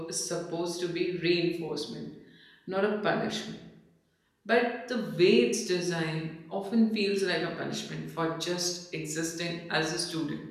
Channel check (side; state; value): both; identical; correlation 1.00